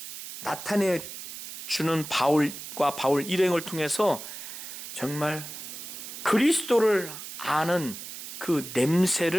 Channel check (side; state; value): right; noise; hiss, 10 dB below the sound